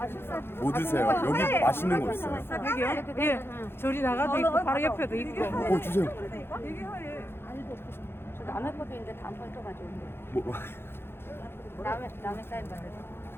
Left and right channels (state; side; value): late; right; 0.11 ms